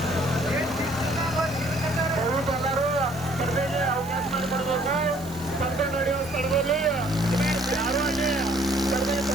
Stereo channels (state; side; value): noise; right; hiss, 19 dB below the sound